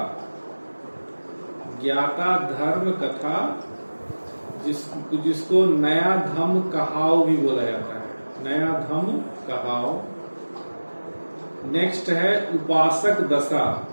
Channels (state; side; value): inverted; both; correlation -1.00